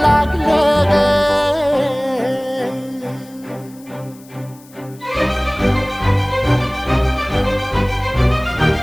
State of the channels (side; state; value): left; noise; hiss, 26 dB below the sound